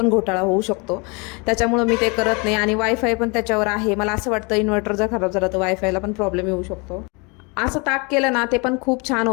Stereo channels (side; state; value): right; quieter; 30.3 dB